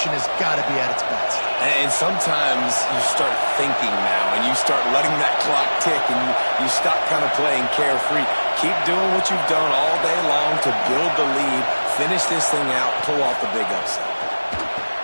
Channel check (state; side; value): inverted; both; correlation -1.00